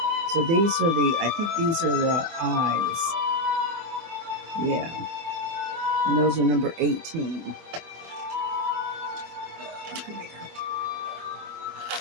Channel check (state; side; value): late; left; 24 ms